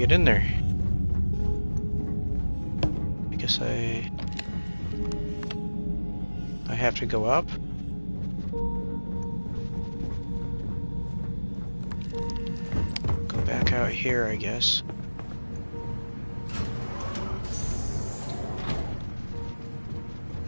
in there? I guess I have to go up? Go back out here, I guess.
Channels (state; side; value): inverted; both; correlation -1.00